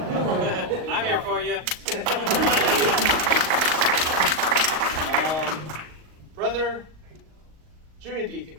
I'm here for you. Brother Junior Deacon.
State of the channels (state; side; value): late; left; 38 ms